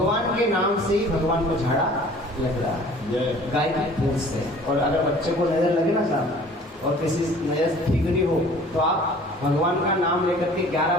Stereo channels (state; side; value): normal; both; correlation 0.49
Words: के नाम से ही भगवान को झाड़ा लग रहा है गाय की पूंछ से। और अगर बच्चे को नजर लगे ना साहब, और किसी नजर ठीक नहीं हो, तो आप भगवान का नाम लेकर के 11